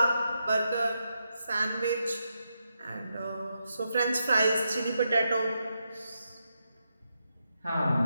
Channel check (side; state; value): both; inverted; correlation -0.84